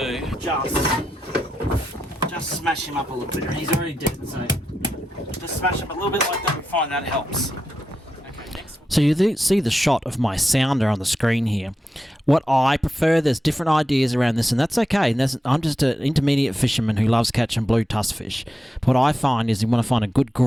just smash him up a little bit. He's already dead, so just smash him a little bit like that. We find that helps. Okay, next. So you see the shot of my sounder on the screen here. What I prefer, there's different ideas around this, and that's okay. And I'm just an intermediate fisherman who loves catching blue tusk fish. But what I find is you want to find a good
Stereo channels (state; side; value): normal; both; correlation 0.88